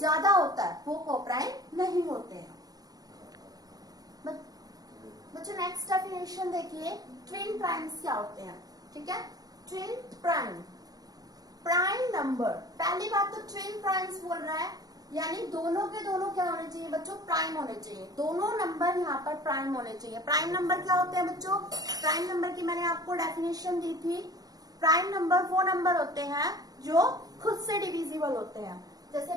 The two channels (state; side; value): late; left; 0.18 ms